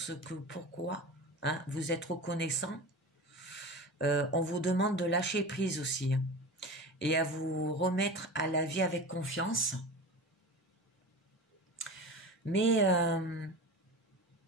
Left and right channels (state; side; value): normal; both; correlation 0.31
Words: ce que, pourquoi, hein, vous êtes reconnaissant. On vous demande de lâcher prise aussi, hein, et à vous remettre à la vie avec confiance. Mais